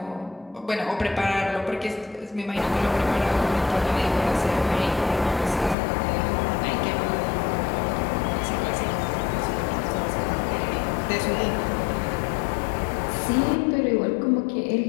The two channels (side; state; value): right; drops out; at 5.8 s